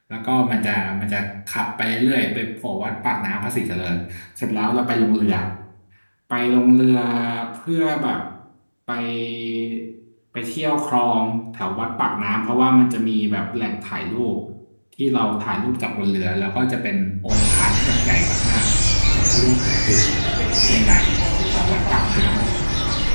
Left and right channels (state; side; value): inverted; both; correlation -1.00